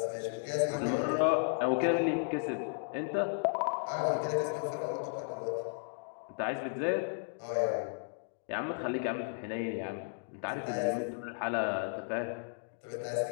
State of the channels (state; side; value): silent; right; digital silence